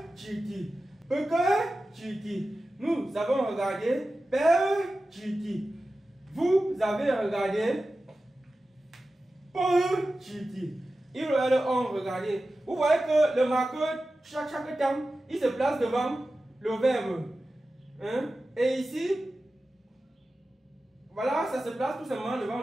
chiti, peke chiti, nous avons regardé, pe chiti. Vous avez regardé pour chiti. Ils ont regardé. Vous voyez que le marqueur, chaque temps, il se place devant le verbe. Et ici, voilà, ça se place tout simplement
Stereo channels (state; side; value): normal; both; correlation 0.94